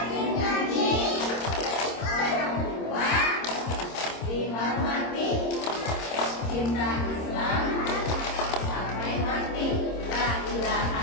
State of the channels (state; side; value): late; right; 26 ms